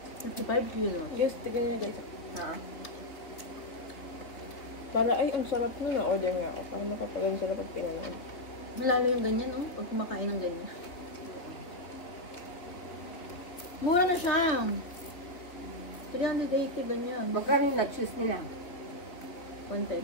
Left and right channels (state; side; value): late; right; 3.2 ms